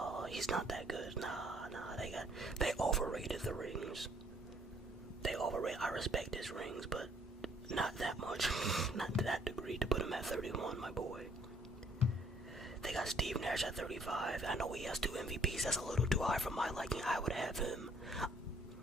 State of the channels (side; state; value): both; normal; correlation 0.63